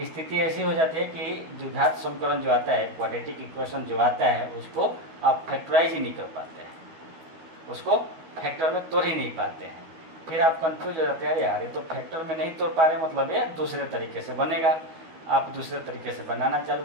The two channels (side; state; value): left; late; 13 ms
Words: स्थिति ऐसी हो जाती है कि द्विघात समीकरण जो आता है, क्वाड्रेटिक इक्वेशन जो आता है, उसको आप फैक्टराइज ही नहीं कर पाते हैं, उसको फैक्टर में तोड़ ही नहीं पाते हैं। फिर आप कंफ्यूज हो जाते हैं, यार ये तो फैक्टर में नहीं तोड़ पा रहे, मतलब ये दूसरे तरीके से बनेगा। आप दूसरे तरीके से बनाना चालू